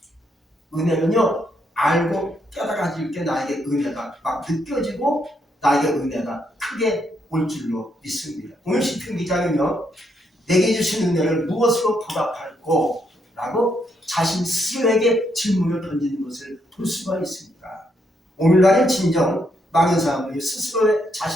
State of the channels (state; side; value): normal; both; correlation 0.76